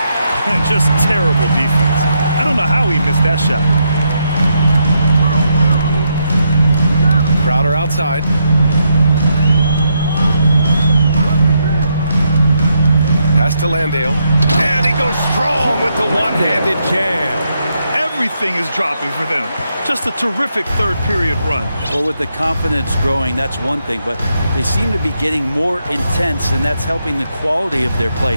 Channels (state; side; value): inverted; both; correlation -0.79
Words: And just terrible defense. I don't know how he missed that shot. Crowder outside. Pass to Landale. And he goes strong with the one-handed jam. Everything is dropping for them. Just a terrific third period run. Well, with the confidence growing, that's one thing, but they seem to be getting more intense, and that's helping the quality of their play